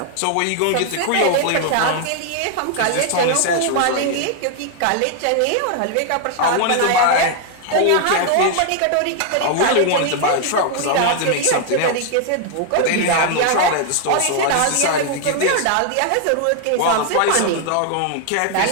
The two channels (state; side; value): different; both; correlation 0.00